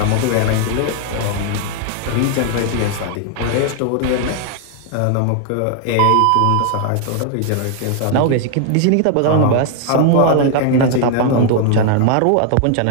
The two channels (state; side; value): different; both; correlation 0.00